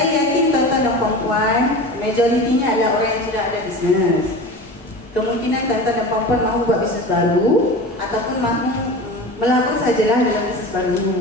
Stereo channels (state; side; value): normal; both; correlation 0.32